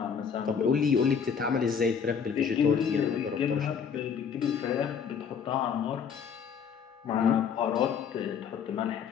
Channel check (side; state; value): right; quieter; 6.9 dB